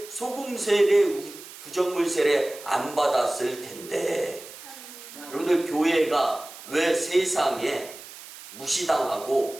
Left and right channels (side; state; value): right; noise; hiss, 16 dB below the sound